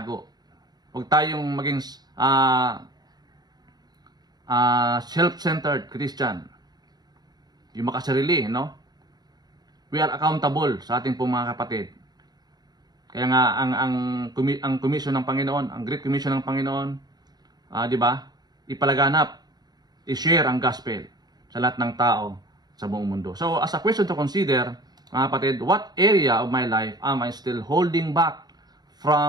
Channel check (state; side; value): late; left; 0.20 ms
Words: Huwag tayong maging self-centered Christian. Yung makasarili, no? We are accountable sa ating pong mga kapatid. Kaya nga, ang commission ng Panginoon, ang Great Commission ng Panginoon, di ba, ipalaganap, i-share ang gospel sa lahat ng tao sa buong mundo. So, as a question to consider, mga kapatid, what area of my life am I still holding back